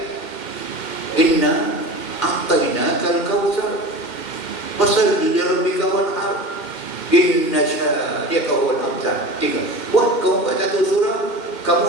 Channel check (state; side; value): late; right; 2.1 ms